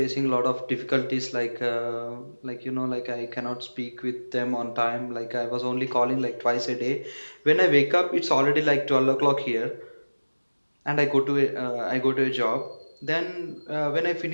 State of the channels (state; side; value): inverted; both; correlation -1.00